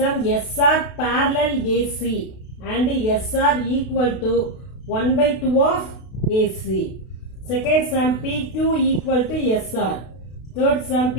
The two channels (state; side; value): late; right; 32 ms